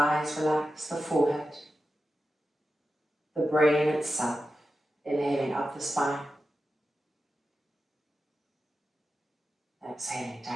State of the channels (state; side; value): normal; both; correlation 0.92